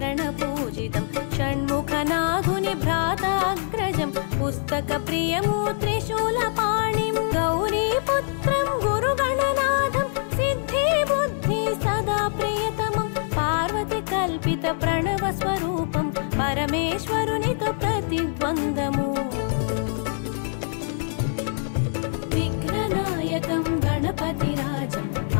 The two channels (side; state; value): right; silent; 61 dB below the other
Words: षण्मुखनाथुनि भ्राताग्रजं पुस्तकप्रियमु त्रिशूलपाणिं गौरीपुत्रं गुरुगणनाथं सिद्धिबुद्धि सदा प्रियतमं पार्वती कल्पित प्रणवस्वरूपं परमेश्वरुनितो प्रतिद्वन्द्वमु विघ्ननायकं गणपतिराजम्